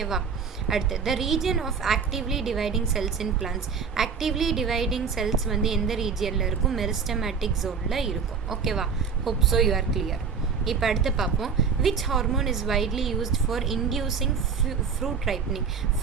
அடுத்து the region of actively dividing cells in plants. Actively dividing cells வந்து எந்த ரீஜியனில் இருக்கும், மெரிஸ்டமேட்டிக் ஜோனில் இருக்கும். ஓகேவா. Hope so you are clear. இப்போ அடுத்து பார்ப்போம். Which hormone is widely used for inducing fruit ripening.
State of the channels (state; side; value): quieter; left; 6.0 dB